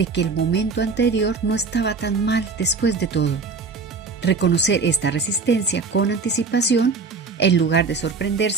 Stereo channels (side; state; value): left; quieter; 4.4 dB